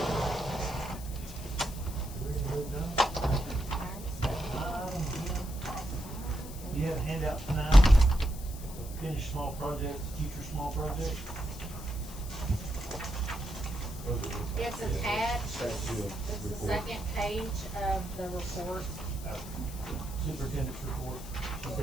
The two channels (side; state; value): left; noise; hiss, 15 dB below the sound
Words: You have a handout tonight, finish small projects, future small projects. It's attached, it's the second page of the report. Superintendent's report, she